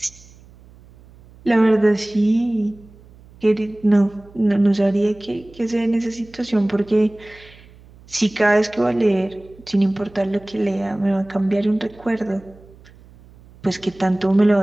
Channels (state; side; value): noise; right; hum, 24 dB below the sound